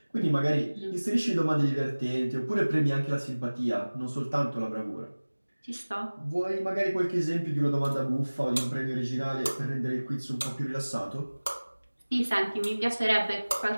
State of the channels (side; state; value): both; inverted; correlation -1.00